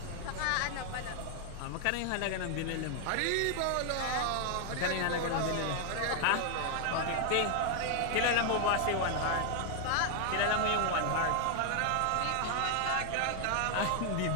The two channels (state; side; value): different; both; correlation 0.00